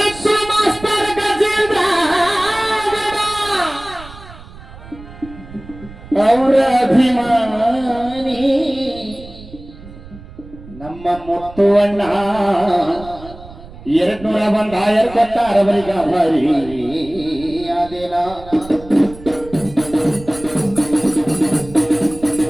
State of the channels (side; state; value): right; noise; rumble, 17 dB below the sound